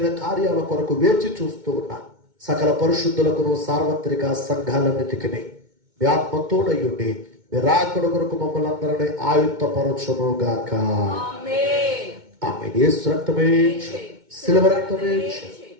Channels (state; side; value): late; left; 2.2 ms